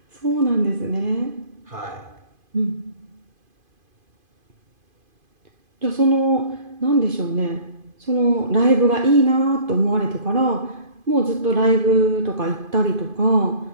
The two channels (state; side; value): late; left; 2.5 ms